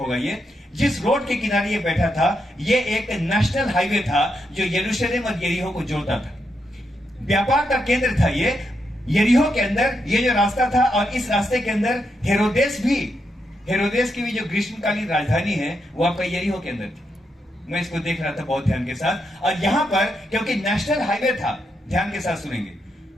ये। जिस रोड के किनारे ये बैठा था, ये एक नेशनल हाईवे था जो यरूशलेम और यरीहो को जोड़ता था। व्यापार का केंद्र था ये यरीहो के अंदर, ये जो रास्ता था। और इस रास्ते के अंदर हेरोदेस की भी जो ग्रीष्मकालीन राजधानी है, वो आपका यरीहो के अंदर थी। मैं इसको देख रहा था बहुत ध्यान के साथ। और यहां पर क्योंकि नेशनल हाईवे था, ध्यान के साथ सुनेंगे,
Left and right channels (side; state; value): both; normal; correlation 0.82